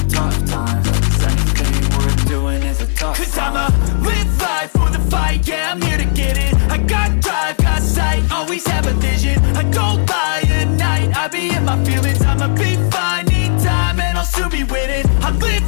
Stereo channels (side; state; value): right; silent; digital silence